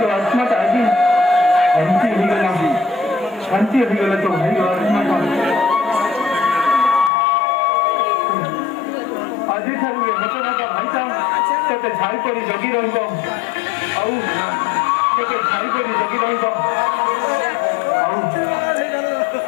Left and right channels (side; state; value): right; drops out; at 7.1 s